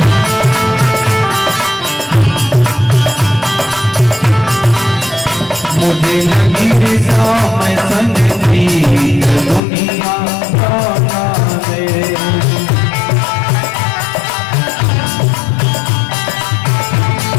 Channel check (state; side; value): drops out; right; at 9.6 s